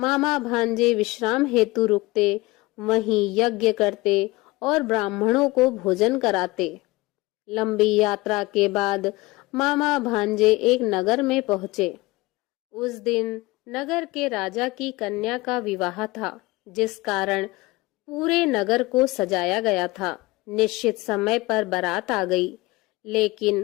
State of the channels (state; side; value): quieter; right; 21.6 dB